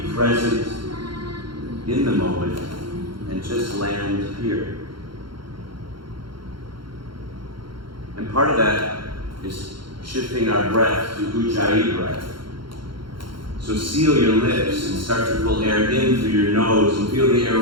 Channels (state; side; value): late; left; 0.73 ms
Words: present in the moment, and just land here. And part of that is shifting our breath to Ujjayi breath. So seal your lips and start to pull air in through your nose and feel the air